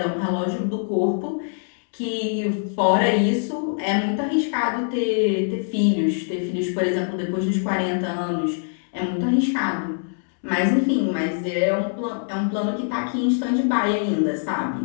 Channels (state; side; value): silent; right; 63 dB below the other